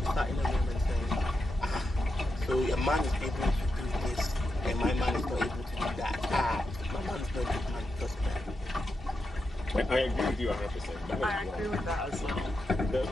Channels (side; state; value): both; normal; correlation 0.87